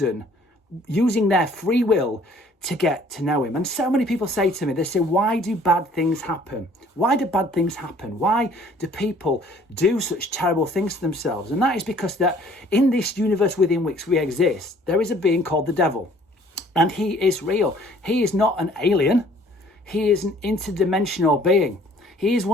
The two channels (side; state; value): both; normal; correlation 0.57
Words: using their free will, to get to know him. And so many people say to me, they say, why do bad things happen? Why do bad things happen? Why do people do such terrible things to themselves? And that is because that in this universe within which we exist, there is a being called the devil. And he is real. He is not an alien. He is an interdimensional being. He is